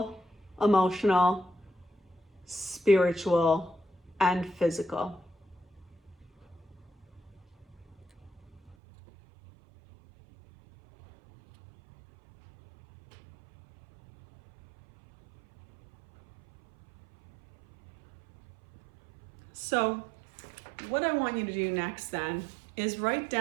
emotional, spiritual, and physical. So what I want you to do next then is write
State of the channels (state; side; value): drops out; left; at 8.8 s